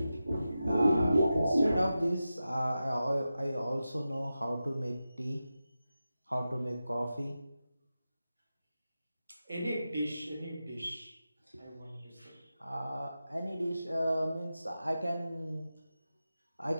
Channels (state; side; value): inverted; both; correlation -0.93